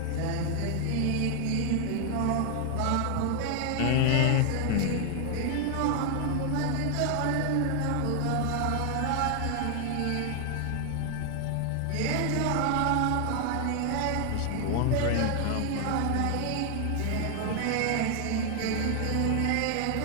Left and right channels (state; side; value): different; both; correlation 0.00